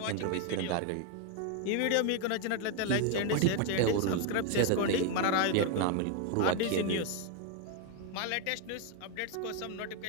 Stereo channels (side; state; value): both; different; correlation 0.01